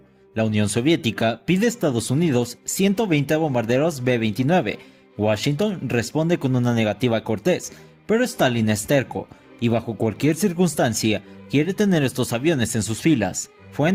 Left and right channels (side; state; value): both; identical; correlation 1.00